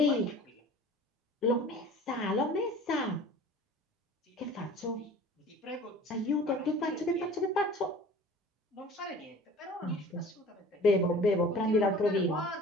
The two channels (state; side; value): normal; both; correlation 0.44